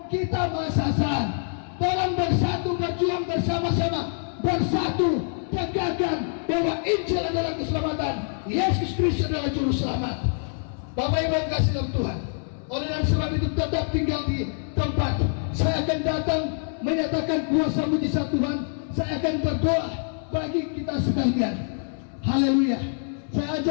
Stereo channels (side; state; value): right; silent; 61 dB below the other